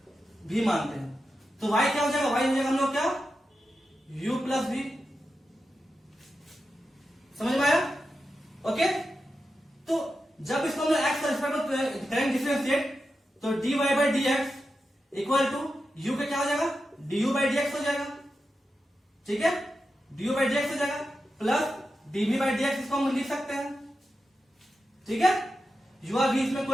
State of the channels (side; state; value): both; normal; correlation 0.90